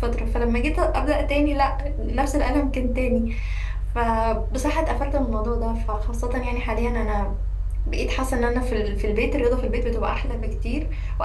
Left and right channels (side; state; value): both; identical; correlation 1.00